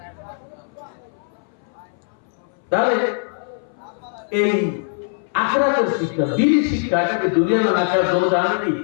তাহলে এই আখিরাতের শিক্ষা, দ্বীনি শিক্ষা, এটাকে দুনিয়া না আখিরাত দুটো জানেনই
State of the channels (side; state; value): right; silent; 61 dB below the other